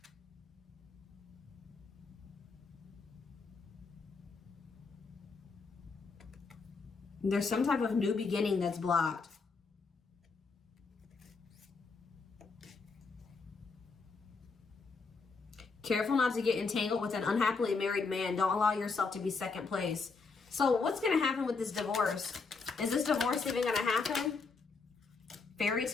There's some type of new beginning that's blocked. Careful not to get entangled with an unhappily married man. Don't allow yourself to be second place. So what's going to happen with this divorce? Is this divorce even going to happen? Fairy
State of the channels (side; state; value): right; quieter; 4.5 dB